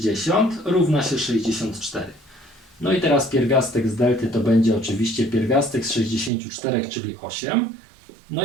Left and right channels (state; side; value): drops out; left; at 6.3 s